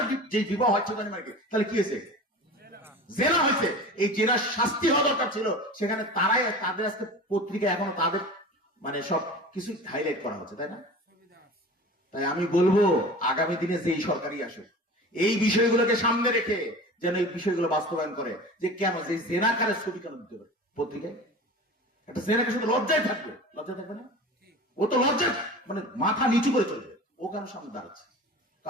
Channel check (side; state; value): both; normal; correlation 0.36